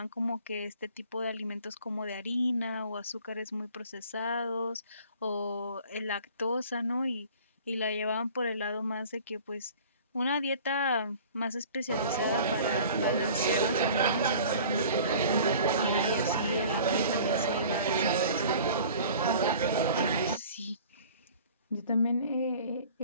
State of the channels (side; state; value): both; inverted; correlation -0.46